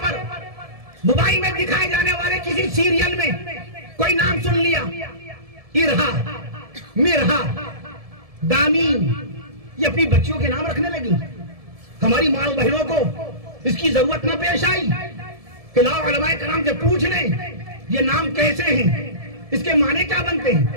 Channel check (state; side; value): late; left; 1.7 ms